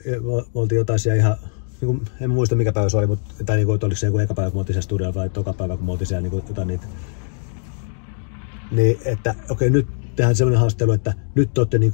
me oltiin jotain siellä ihan, en muista mikä päivä se oli, mutta tai että oliko se joku eka päivä, kun me oltiin siellä studiolla vai toka päivä, kun me oltiin siellä jotain niitä. Niin, että okei, nyt tehdään semmoinen haastattelu, että nyt te olette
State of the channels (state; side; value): silent; right; digital silence